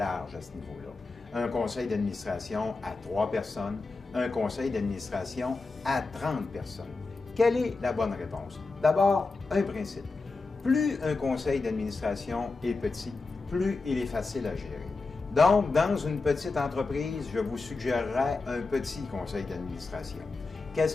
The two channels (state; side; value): quieter; right; 3.8 dB